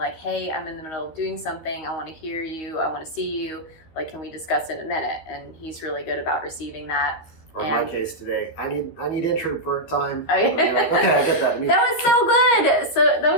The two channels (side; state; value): right; late; 13 ms